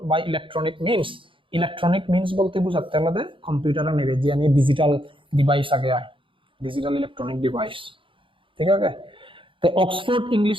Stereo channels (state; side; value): late; left; 0.25 ms